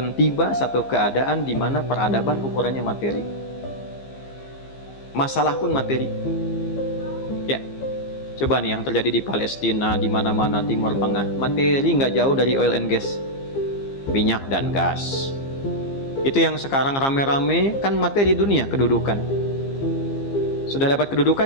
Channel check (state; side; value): late; right; 15 ms